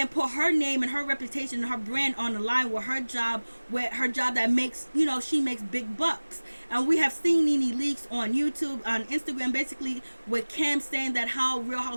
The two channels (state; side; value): inverted; both; correlation -1.00